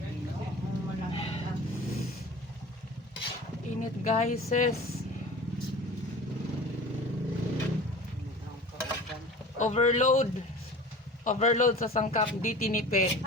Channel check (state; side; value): normal; both; correlation 0.39